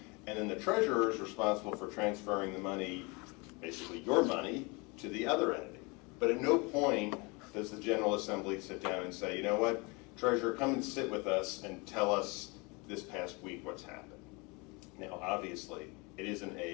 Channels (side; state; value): right; quieter; 28.3 dB